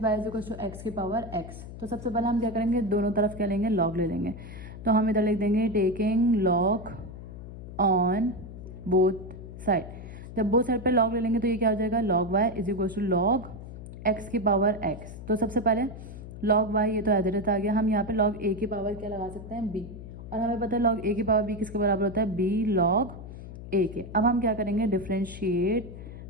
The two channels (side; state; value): left; noise; hum, 12 dB below the sound